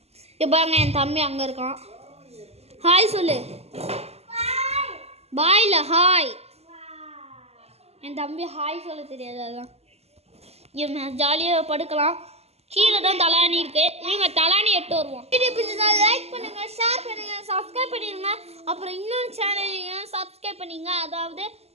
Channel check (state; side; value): late; left; 0.30 ms